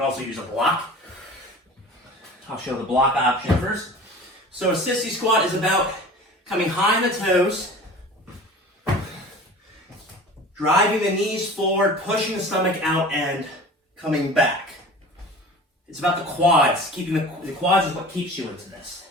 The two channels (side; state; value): both; normal; correlation 0.40